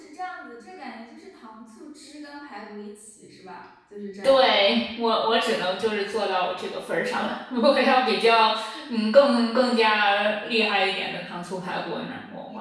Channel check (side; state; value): both; identical; correlation 1.00